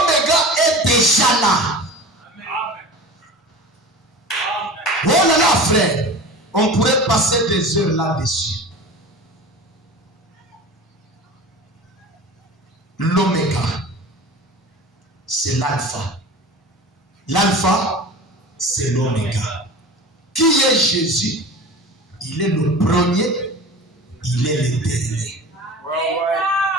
est déjà là. Oh là là, frère, on pourrait passer des heures là-dessus. L'oméga, c'est l'alpha. L'alpha, c'est l'oméga. Qui est Jésus? Il est le premier, il est le dernier.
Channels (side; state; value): both; normal; correlation 0.36